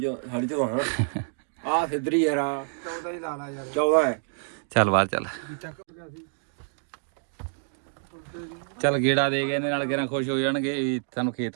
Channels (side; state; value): left; silent; digital silence